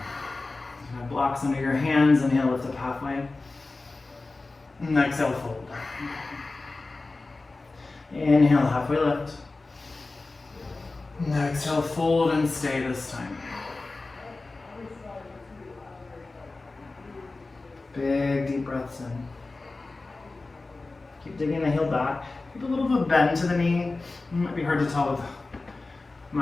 Have blocks under your hands. Inhale, lift up halfway. And exhale, fold. Inhale, halfway lift. And exhale, fold and stay this time. Big deep breaths in. Keep digging the heel back. Keep a little bit of bend to the knee. It might be hard to tell with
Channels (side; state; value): right; quieter; 3.4 dB